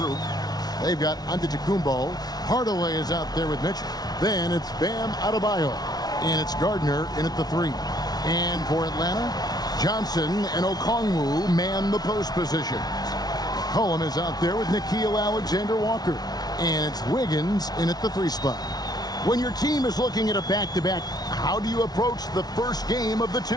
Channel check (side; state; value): right; late; 0.19 ms